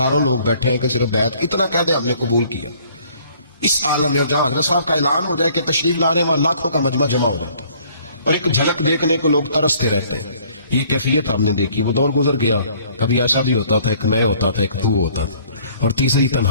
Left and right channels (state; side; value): inverted; both; correlation -0.58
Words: لوگ بیٹھے ہیں کہ صرف بیعت اتنا کہہ دیں ہم نے قبول کیا. اس عالم میں جہاں حضرت صاحب کا اعلان ہو جائے کہ تشریف لا رہے ہیں, وہاں لاکھوں کا مجمع جمع ہو جاتا ہے, اور ایک جھلک دیکھنے کو لوگ ترستے رہتے ہیں. یہ کیفیت ہم نے دیکھی. وہ دور گزر گیا, کبھی ایسا بھی ہوتا تھا ایک میں ہوتا تھا, ایک تو ہوتا تھا, اور تیسری